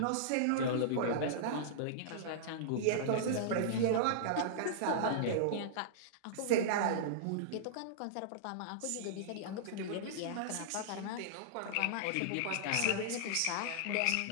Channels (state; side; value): different; both; correlation -0.02